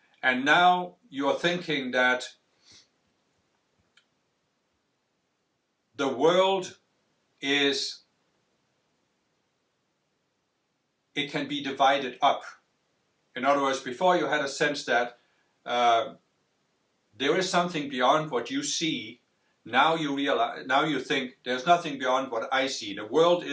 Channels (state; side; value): identical; both; correlation 1.00